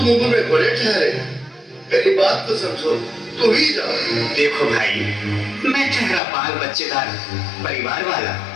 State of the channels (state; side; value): drops out; right; at 6.2 s